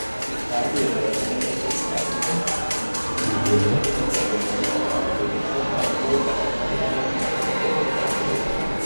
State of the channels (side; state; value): both; inverted; correlation -1.00